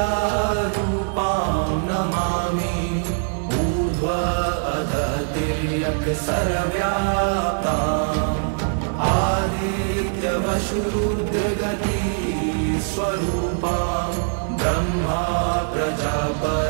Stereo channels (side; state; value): left; silent; 64 dB below the other